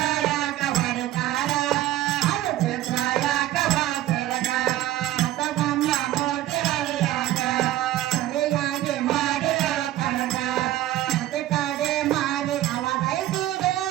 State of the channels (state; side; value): quieter; left; 14.2 dB